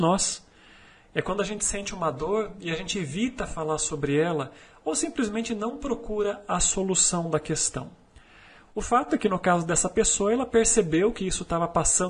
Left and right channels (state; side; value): identical; both; correlation 1.00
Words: É quando a gente sente uma dor e a gente evita falar sobre ela ou simplesmente não procura a solução da questão. O fato é que no caso dessa pessoa, ela percebeu que isso estava